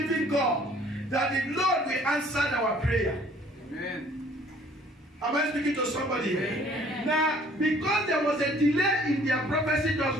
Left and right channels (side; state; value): both; normal; correlation 0.57